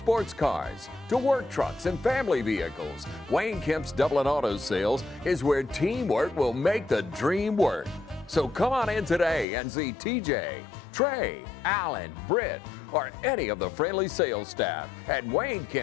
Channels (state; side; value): drops out; right; at 9.5 s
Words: cars to work trucks and family vehicles, Wayne Kemp's Dublin Auto Sales is where teamwork will make the dream work. So come on in today and see TJ, Trey, Alan, Britt, or any of the friendly sales staff at Wayne